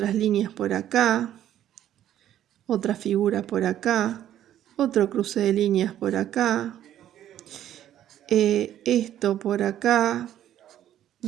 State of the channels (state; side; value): quieter; left; 11.6 dB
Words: líneas por acá, otra figura por acá, otro cruce de líneas por acá, esto por acá,